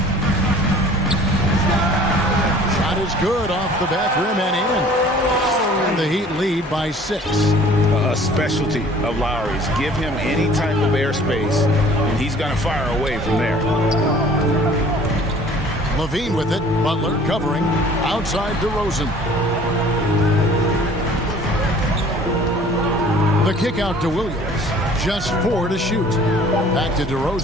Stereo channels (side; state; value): both; normal; correlation 0.51